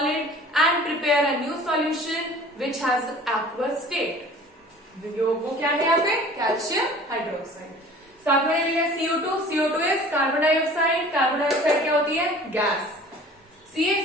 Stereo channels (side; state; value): both; normal; correlation 0.46